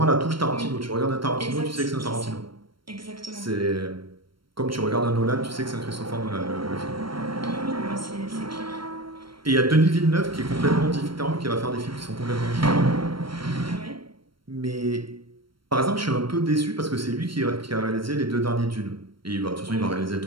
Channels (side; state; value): left; late; 0.73 ms